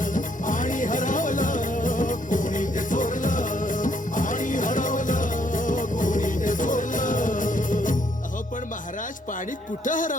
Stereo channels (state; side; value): normal; both; correlation 0.70